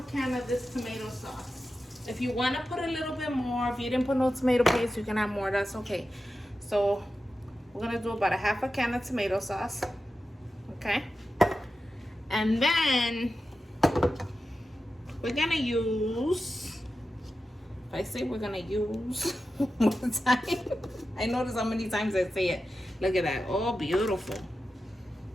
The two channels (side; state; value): both; normal; correlation 0.92